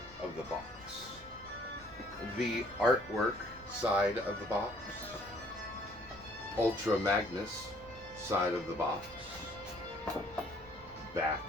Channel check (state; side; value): noise; right; rumble, 21 dB below the sound